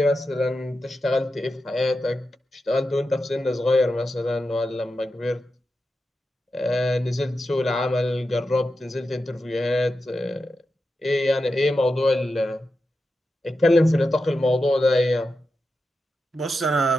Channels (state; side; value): normal; both; correlation 0.90